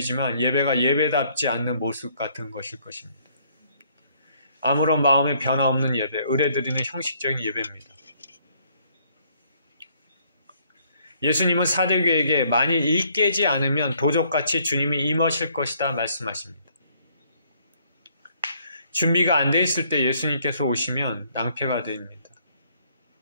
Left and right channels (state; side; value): inverted; both; correlation -0.65